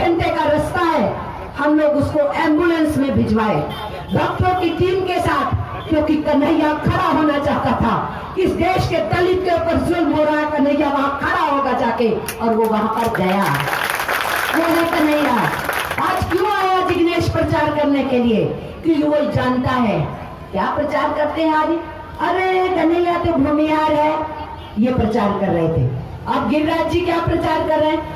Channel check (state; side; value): identical; both; correlation 1.00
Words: का रास्ता है, हम लोग उसको एम्बुलेंस में भिजवाए डॉक्टरों की टीम के साथ, क्योंकि कन्हैया खड़ा होना चाहता था। इस देश के दलित के ऊपर जुल्म हो रहा है, कन्हैया वहां खड़ा होगा जाके, और वो वहां पर गया। वो है कन्हैया। आज क्यों आया जिग्नेश प्रचार करने के लिए? क्योंकि वो जानता है क्या प्रचार करते हैं आज, अरे कन्हैया तो भूमिहार है, ये प्रचार कर रहे थे। अब गिरिराज जी क्या प्रचार कर रहे